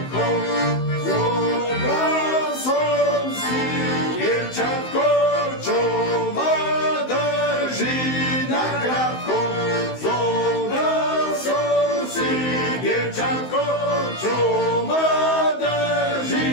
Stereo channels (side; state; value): right; late; 16 ms